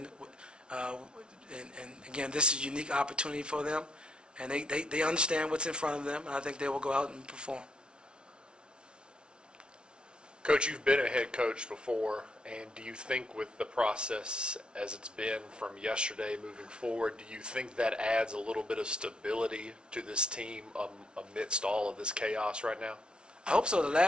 And again, this is a unique opportunity for them, and they understand what's in front of them, and I think they will go out and perform. Coach, you've been a head coach before, and do you think with the process as it's been from yesterday moving forward, do you think that adds a little bit of stability to this team amidst all of this chaos right now? I hope so. The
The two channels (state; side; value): late; left; 0.056 ms